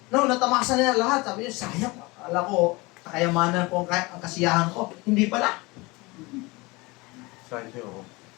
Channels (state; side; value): quieter; right; 24.1 dB